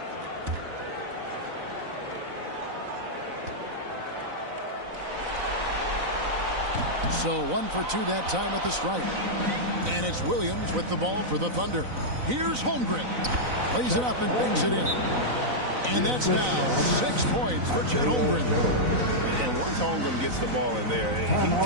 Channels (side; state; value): left; late; 4.0 ms